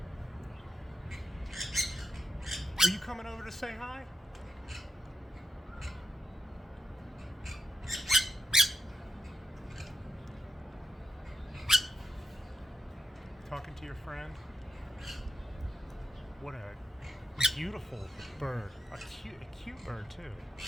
Are you coming over to say hi? Talking to your friend? What a beautiful bird. A cute bird too.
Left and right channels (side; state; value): both; normal; correlation 0.84